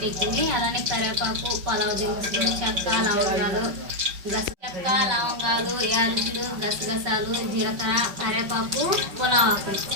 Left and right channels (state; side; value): late; left; 5.3 ms